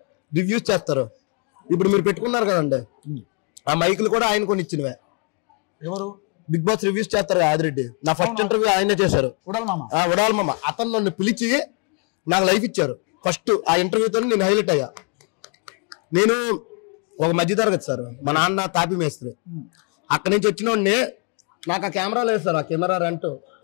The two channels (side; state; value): right; quieter; 37.9 dB